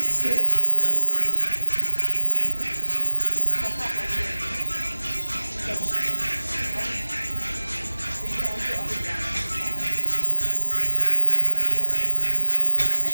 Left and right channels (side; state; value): both; inverted; correlation -1.00